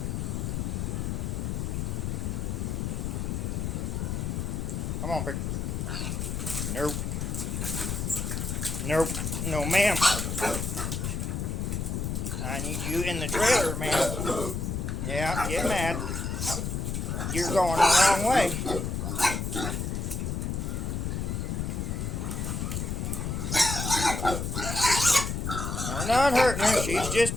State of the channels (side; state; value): left; noise; rumble, 2 dB below the sound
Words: Come on, Pick. Nope. Nope. No, ma'am. I need you in the trailer, ma'am. Yeah, get mad. You're going the wrong way. We're not hurting her. She's